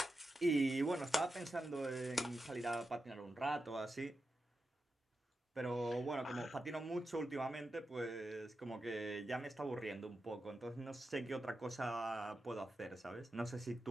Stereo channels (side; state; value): both; normal; correlation 0.90